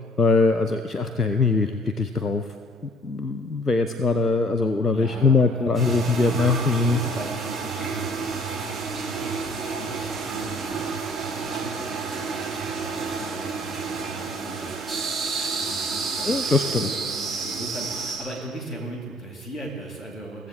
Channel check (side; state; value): both; normal; correlation 0.57